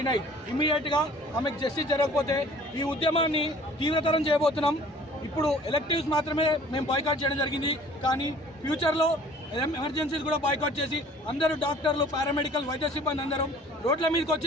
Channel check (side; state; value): both; normal; correlation 0.51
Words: ఇమ్మీడియట్గా ఆమెకు జస్టిస్ జరగకపోతే ఈ ఉద్యమాన్ని తీవ్రతరం చేయబోతున్నాం. ఇప్పుడు ఎలక్టివ్స్ మాత్రమే మేము బాయ్కాట్ చేయడం జరిగింది, కానీ ఫ్యూచర్లో ఎమర్జెన్సీస్ కూడా బాయ్కాట్ చేసి అందరూ డాక్టర్లు, పారామెడికల్, వైద్య సిబ్బంది అందరం రోడ్ల మీదకి